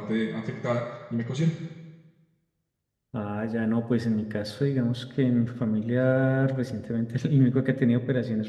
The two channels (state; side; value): identical; both; correlation 1.00